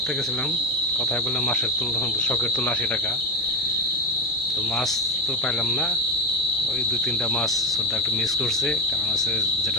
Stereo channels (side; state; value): both; normal; correlation 0.16